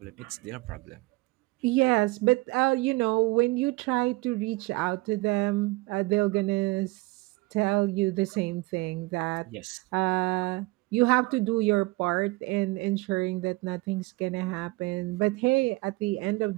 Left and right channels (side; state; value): left; quieter; 22.6 dB